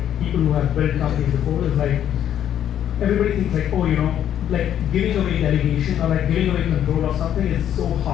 people who have built companies before, is like everybody thinks like, oh, like giving away delegation or like giving away control of something is so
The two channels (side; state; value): right; quieter; 10.3 dB